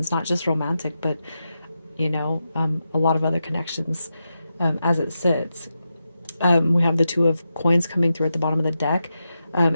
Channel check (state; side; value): inverted; both; correlation -0.88